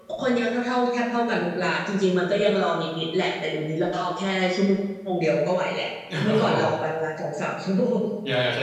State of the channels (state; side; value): identical; both; correlation 1.00